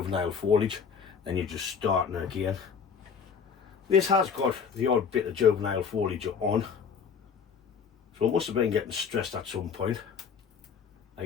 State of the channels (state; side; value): quieter; right; 6.4 dB